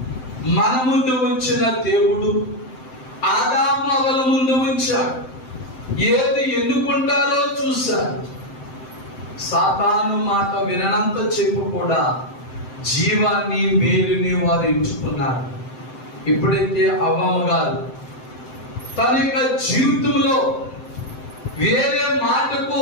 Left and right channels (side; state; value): right; late; 7.8 ms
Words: మన ముందు ఉంచిన దేవుడు ఆదాము అవల ముందు ఉంచాడు. ఏది ఎన్నుకుంటారో చూశారు. సాతాను మాట వినంత చెప్పు కూడా జీవాన్ని మేలుని వారు ఎంచుకున్నారు. ఎప్పుడైతే అవ్వమ్మ గారు తన యొక్క జీవితంలో వేరే మాటకు